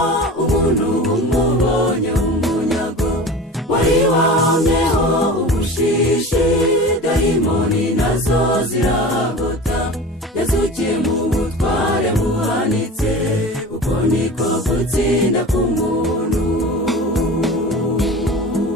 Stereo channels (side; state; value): both; normal; correlation 0.35